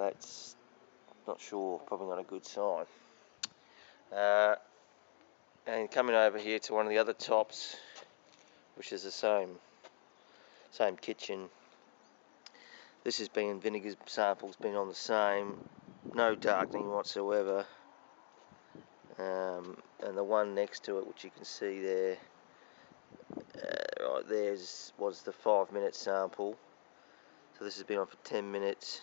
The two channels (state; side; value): silent; right; digital silence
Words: not sure, probably not a good sign. And coming over here to one of the other tops, which is the same kitchen. This has been, vinegar sample's been on the same, no darkening whatsoever. And the one next to it, which you can see there, right there, was the 5-minute sample. So this has been on for 10 minutes.